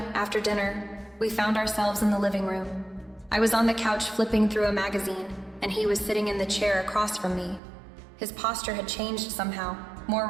after dinner, we found ourselves in the living room. I was on the couch flipping through a magazine, and he was sitting in the chair across from me. His posture had changed somehow, more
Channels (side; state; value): left; drops out; at 7.6 s